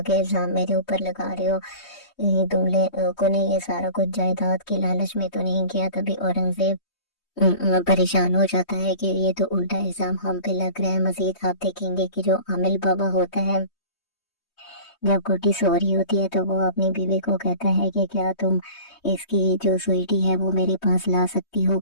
इल्ज़ाम मेरे ऊपर लगा रहे हो, तुम लोगों ने ये सारा कुछ जायदाद की लालच में तो नहीं किया। तभी औरंगजेब परेशान हो जाता है कि ये तो उल्टा इल्जाम हम पे लग रहा है। मजीद आप देखेंगे कि जो आमिल बाबा होता है जब गुड्डी सो रही होती है तो वो अपनी बीवी को कहता है कि क्या तुम इसकी जो स्वीटी है वो मेरे पास ला सकती हो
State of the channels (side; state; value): right; late; 3.2 ms